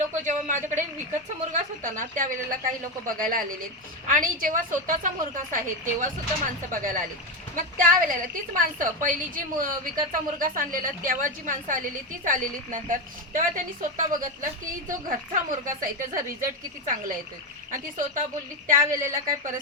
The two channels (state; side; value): normal; both; correlation 0.12